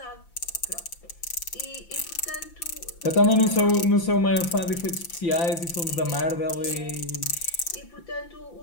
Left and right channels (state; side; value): late; right; 5.9 ms